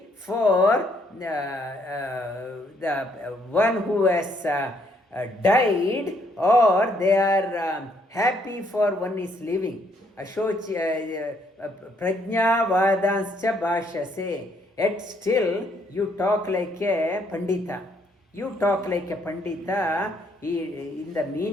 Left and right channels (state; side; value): normal; both; correlation 0.70